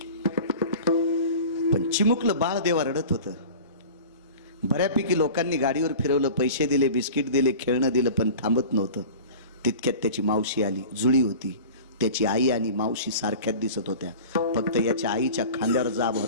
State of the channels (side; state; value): both; inverted; correlation -0.38